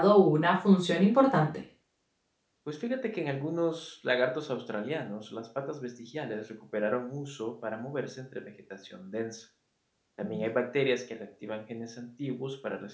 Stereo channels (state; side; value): identical; both; correlation 1.00